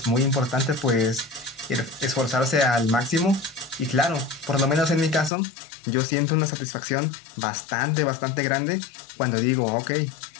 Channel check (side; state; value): right; drops out; at 5.3 s